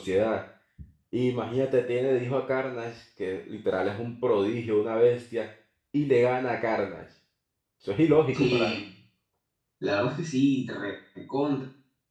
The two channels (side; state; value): both; identical; correlation 1.00